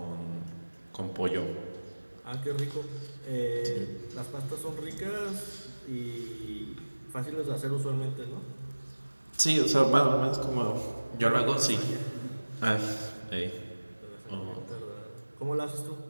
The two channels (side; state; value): both; inverted; correlation -1.00